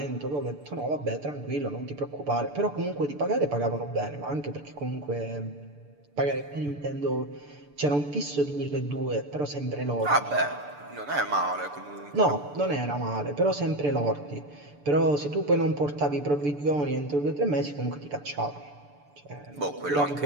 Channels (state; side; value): late; left; 6.9 ms